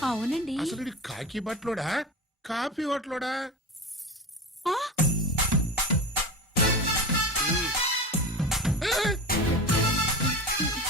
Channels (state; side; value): normal; both; correlation 0.28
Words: అవునండి. అసలు కాకి బట్టలోడా కాఫీ బట్టలోడా?